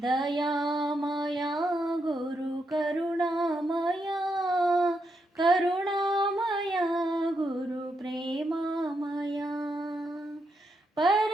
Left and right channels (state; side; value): normal; both; correlation 0.82